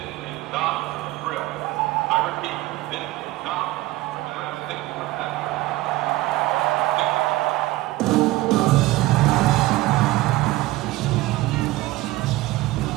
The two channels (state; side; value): quieter; left; 18.3 dB